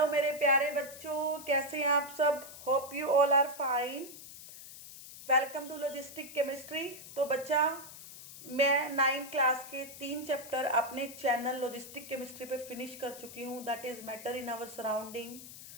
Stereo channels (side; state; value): left; noise; hiss, 14 dB below the sound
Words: मेरे प्यारे बच्चों, कैसे हैं आप सब। Hope you all are fine. Welcome to logistic chemistry. तो बच्चा, मैं 9th क्लास के 3 चैप्टर अपने चैनल लॉजिस्टिक केमिस्ट्री पे फिनिश कर चुकी हूँ। That is matter in our surrounding,